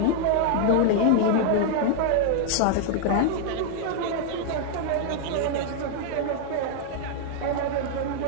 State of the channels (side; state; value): both; different; correlation -0.01